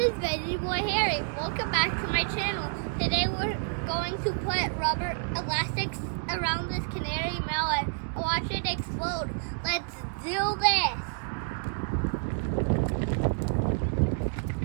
Veggie Boy Harry. Welcome back to my channel. Today we're going to put rubber elastics around this canary melon and watch it explode. Let's do this.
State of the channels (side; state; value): left; silent; 59 dB below the other